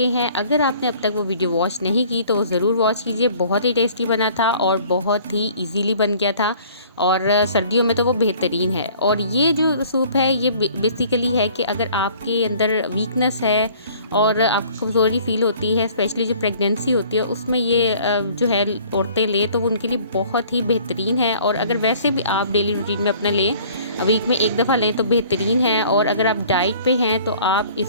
हैं, अगर आपने अब तक वो वीडियो वॉच नहीं की तो वो ज़रूर वॉच कीजिए। बहुत ही टेस्टी बना था और बहुत ही इजीली बन गया था और सर्दियों में तो वो बेहतरीन है। और ये जो सूप है ये बेसिकली है कि अगर आपके अंदर वीकनेस है और आपको कमज़ोरी फील होती है, स्पेशली जो प्रेगनेंसी होती है उसमें ये जो है औरतें लें तो वो उनके लिए बहुत ही बेहतरीन है। और अगर वैसे भी आप डेली रूटीन में अपना लें, वीक में 1 दफ़ा लें तो बेहतरीन है। और अगर आप डाइट पे हैं तो आप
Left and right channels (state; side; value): inverted; both; correlation -0.53